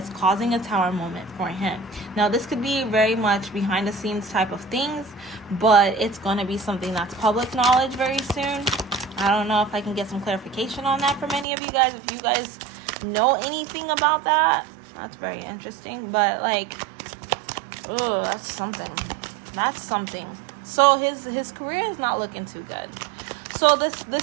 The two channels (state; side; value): drops out; left; at 11.5 s